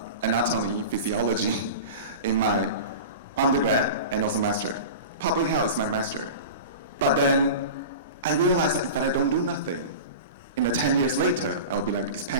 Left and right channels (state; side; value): inverted; both; correlation -0.32